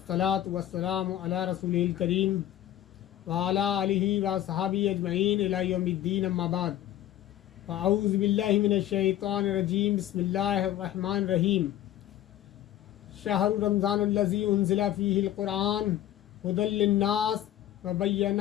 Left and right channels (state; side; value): quieter; right; 12.5 dB